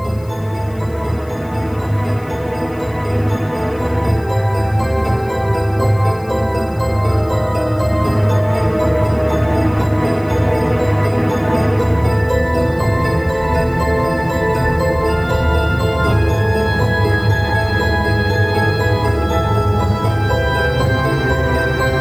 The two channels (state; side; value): noise; left; hiss, 27 dB below the sound